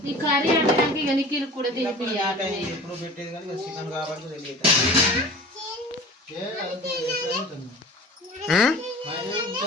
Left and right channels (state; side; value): normal; both; correlation 0.40